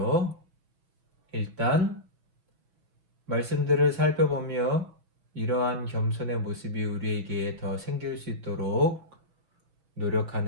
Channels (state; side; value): late; left; 6.0 ms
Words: 일단 말씀들을 살펴보며 이러한 겸손의 모습이 우리에게 더 생길 수 있도록